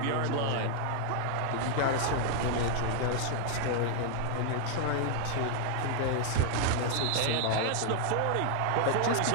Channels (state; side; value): different; both; correlation 0.00